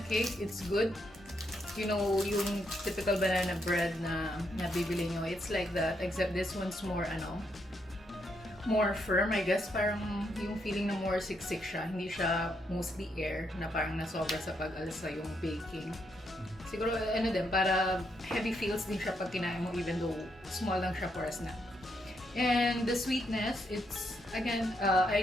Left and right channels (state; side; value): normal; both; correlation 0.78